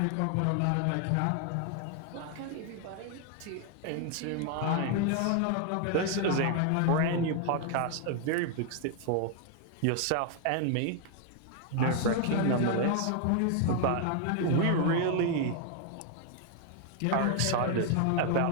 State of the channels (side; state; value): both; different; correlation 0.00